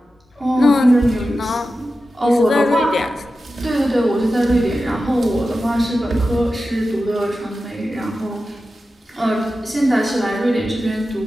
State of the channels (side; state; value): both; normal; correlation 0.93